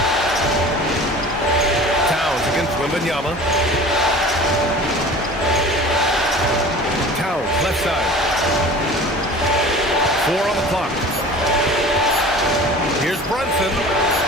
Towns against Wembanyama. Towns, left side. 4 on the clock. Here's Brunson.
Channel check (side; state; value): both; normal; correlation 0.41